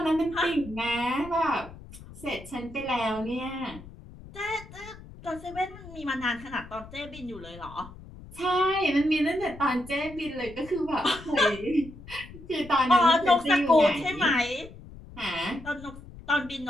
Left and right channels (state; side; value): noise; left; rumble, 17 dB below the sound